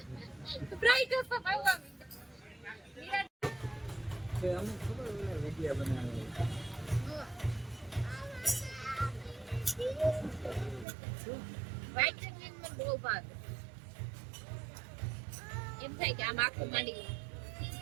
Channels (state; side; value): drops out; left; at 10.9 s